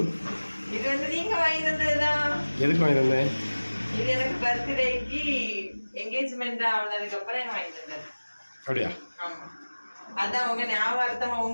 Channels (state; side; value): inverted; both; correlation -1.00